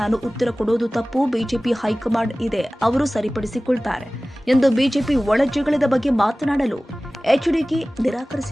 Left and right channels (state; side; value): normal; both; correlation 0.98